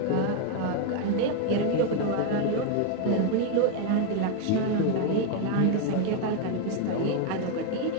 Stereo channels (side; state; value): both; different; correlation 0.01